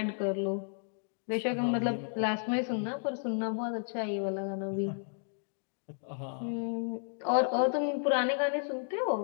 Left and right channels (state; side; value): silent; right; 56 dB below the other